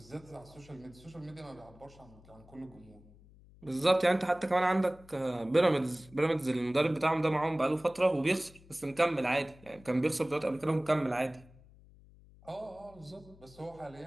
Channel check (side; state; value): left; noise; hum, 24 dB below the sound